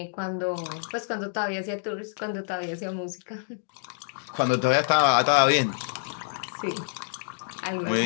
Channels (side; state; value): right; silent; digital silence